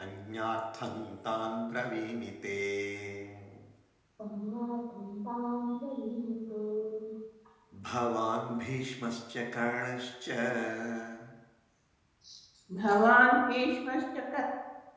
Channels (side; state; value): both; identical; correlation 1.00